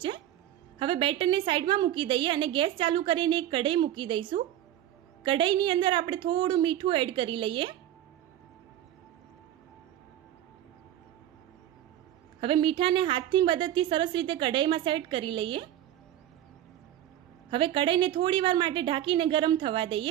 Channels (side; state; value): left; quieter; 12.3 dB